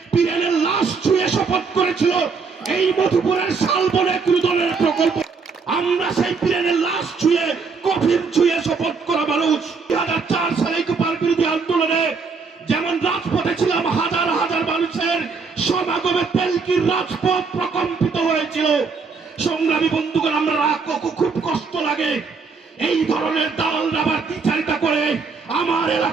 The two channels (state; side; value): quieter; left; 4.9 dB